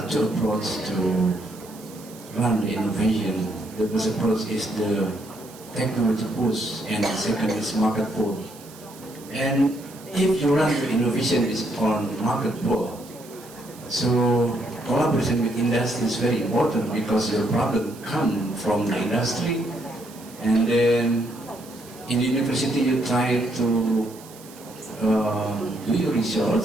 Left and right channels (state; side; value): noise; right; hiss, 20 dB below the sound